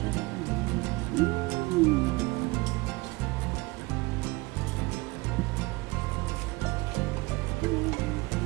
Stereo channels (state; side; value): quieter; left; 22.7 dB